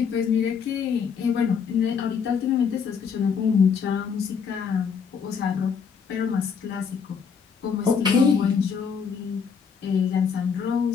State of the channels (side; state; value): right; quieter; 6.4 dB